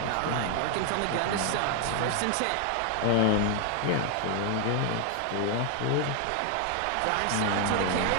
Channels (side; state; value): both; different; correlation 0.00